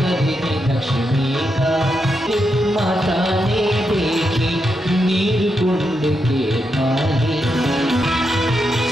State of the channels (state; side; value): normal; both; correlation 0.84